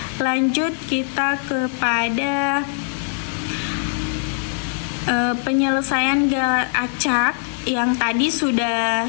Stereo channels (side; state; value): right; silent; 65 dB below the other